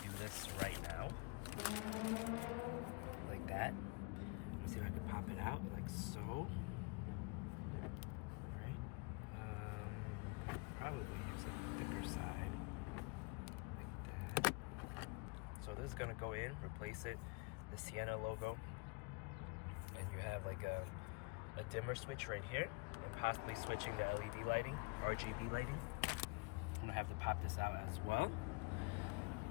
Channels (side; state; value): right; quieter; 28.9 dB